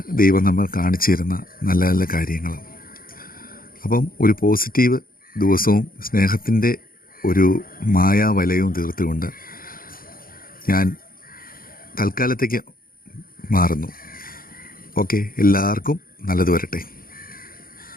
ദൈവം നമ്മൾ കാണിച്ചു തരുന്ന നല്ല നല്ല കാര്യങ്ങൾ. അപ്പം ഒരു പോസിറ്റീവ് ദിവസവും സ്നേഹത്തിൻ്റെ ഒരു മായാവലയവും തീർത്തുകൊണ്ട് ഞാൻ തൽക്കാലത്തേക്ക് മാറുന്നു. ഓക്കെ, എല്ലാവർക്കും നല്ലത് വരട്ടെ.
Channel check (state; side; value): late; right; 0.42 ms